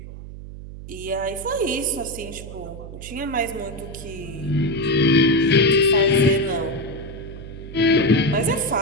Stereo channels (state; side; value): noise; right; hum, 13 dB below the sound